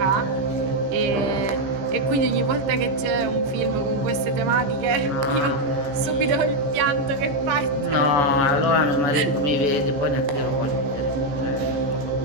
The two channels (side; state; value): left; late; 15 ms